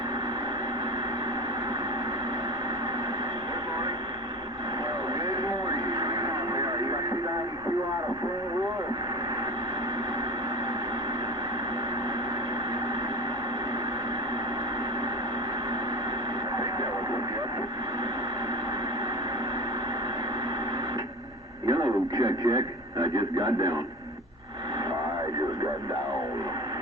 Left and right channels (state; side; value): normal; both; correlation 0.30